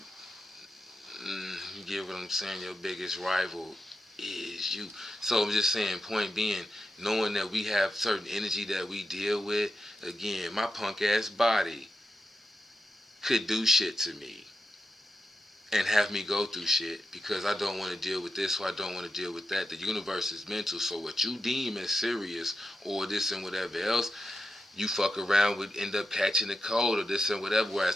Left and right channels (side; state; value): both; normal; correlation 0.88